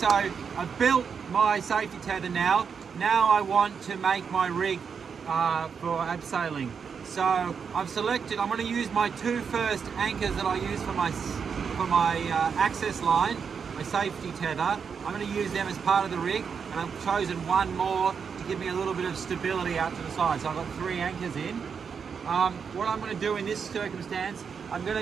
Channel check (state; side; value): quieter; left; 6.4 dB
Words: I've built my safety tether now. Now I want to make my rig for abseiling. So I've selected, I'm going to use my two first anchors that I use for my access line, my safety tether. I'm going to use them as part of the rig, and I've chosen one more to give me a little bit of stability out to the side. So I've got 3 anchors in. What I'm going to do in this circumstance, I've